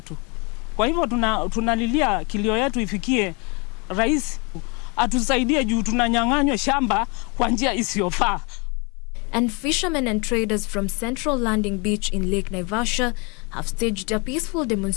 Kwa hivyo tunalilia kilio yetu ifikie rais atusaidie juu tunanyang'anywa shamba kwa njia isiyofaa. And fishermen and traders from Central Landing Beach in Lake Naivasha have staged a peaceful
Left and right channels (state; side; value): quieter; right; 30.9 dB